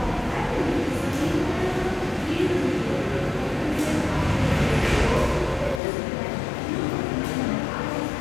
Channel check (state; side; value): drops out; right; at 5.8 s